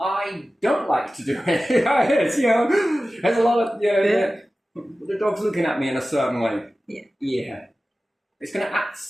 I don't like to do it. It's, you know, there's a lot of, you know, the dog's looking at me in a certain way. Yeah. It's going to act a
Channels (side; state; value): both; normal; correlation 0.95